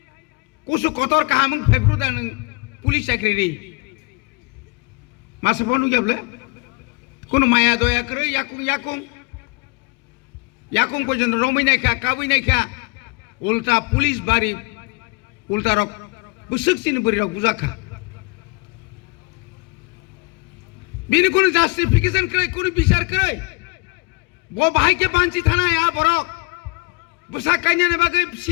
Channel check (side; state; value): right; quieter; 27.6 dB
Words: কুসু কতর কাহাম ফেব্রু দান পুলিশ চাকরি মাসে বনু গেবলে কোন মায়া দয়া করে ইয়াকুং ইয়াকুং ইয়াকুং পর্যন্ত রমি নাইখা কাবুই নাইখা উল্টা পুলিশ বাড়ি উল্টা রক বুসুক চিনি বরি রক বুঝাখা বিনি কোন জাস্টিফিকেশন করে কোন বিচার করে वो भाई के पांची थाना यहाँ बरक बुसा काइना ने बागे